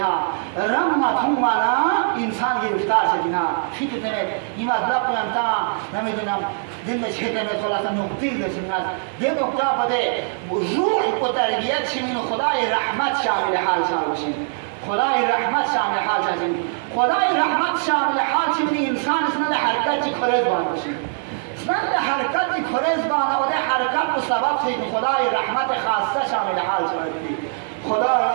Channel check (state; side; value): silent; left; 58 dB below the other